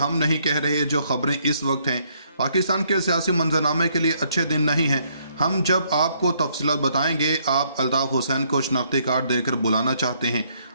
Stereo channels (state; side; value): inverted; both; correlation -0.69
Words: नहीं कह रहे, जो खबरें इस वक्त हैं पाकिस्तान के सियासी मंजरनामे के लिए अच्छे दिन नहीं हैं। हम जब आपको तफसीलात बताएंगे। आप अल्ताफ़ हुसैन को शनाख्ती कार्ड देकर बुलाना चाहते हैं।